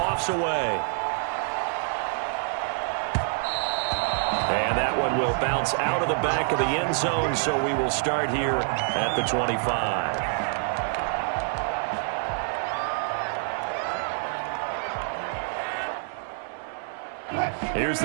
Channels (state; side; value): silent; left; 57 dB below the other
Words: away. And that one will bounce out of the back of the end zone, so we will start here at the 25. Here's